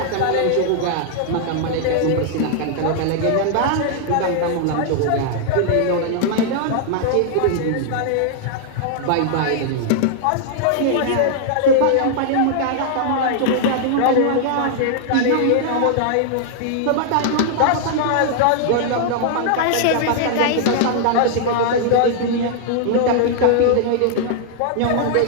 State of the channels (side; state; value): both; different; correlation -0.01